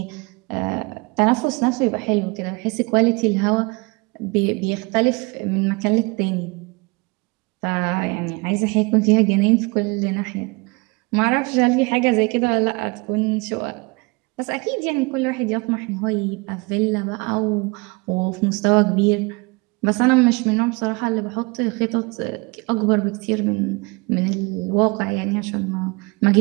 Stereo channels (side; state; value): left; quieter; 27.1 dB